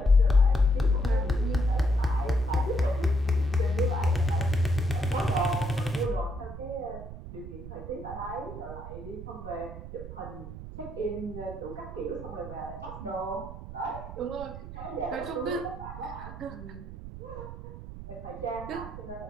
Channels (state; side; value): noise; right; rumble, 11 dB below the sound